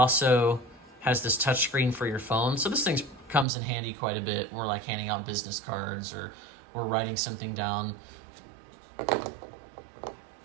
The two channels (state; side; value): drops out; left; at 3.5 s